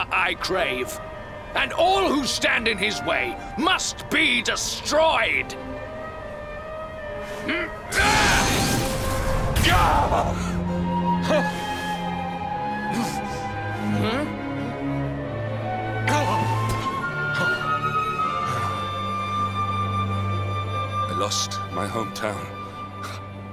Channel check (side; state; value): both; identical; correlation 1.00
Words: I crave. And all who stand in his way must be destroyed. I lost my hometown,